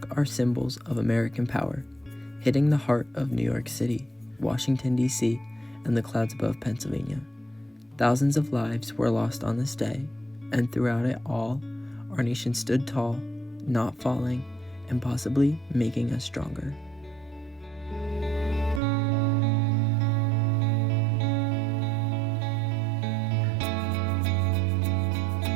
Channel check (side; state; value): left; drops out; at 18.8 s